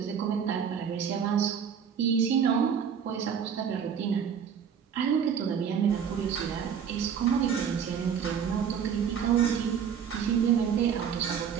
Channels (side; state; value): left; quieter; 7.6 dB